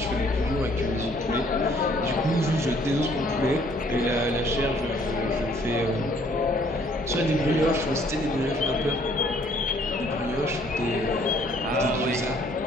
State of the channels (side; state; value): both; normal; correlation 0.61